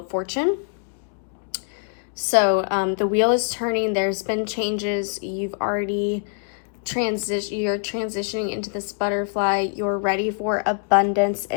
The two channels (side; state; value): right; silent; 63 dB below the other